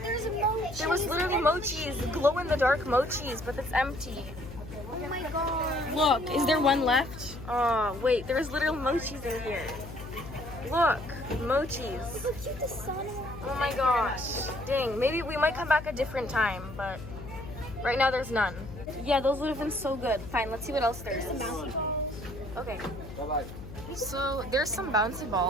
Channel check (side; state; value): left; noise; hum, 12 dB below the sound